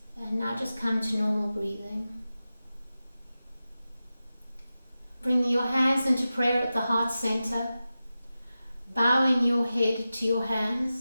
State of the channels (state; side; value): inverted; both; correlation -0.93